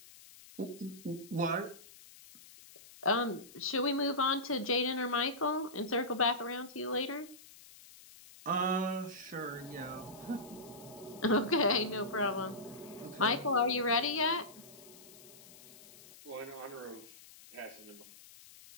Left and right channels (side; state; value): left; noise; hiss, 20 dB below the sound